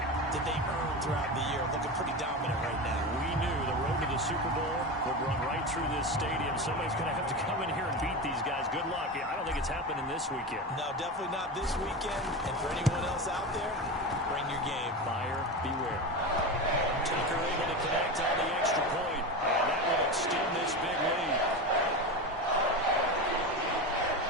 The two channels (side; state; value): both; normal; correlation 0.22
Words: that they earned throughout the year. Looking pretty dominant right now. We knew the road to the Super Bowl would run right through this stadium. Somebody's going to have to come in here and beat these guys. Good luck. I don't think it's happening this weekend. No, definitely not this weekend. And for anyone else out there, bring your game. Buyer beware. Tucker able to connect on the extra point. And that will extend this big lead.